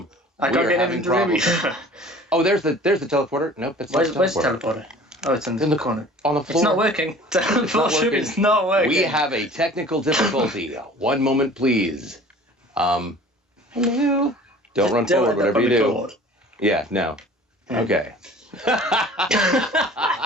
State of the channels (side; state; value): both; normal; correlation 0.46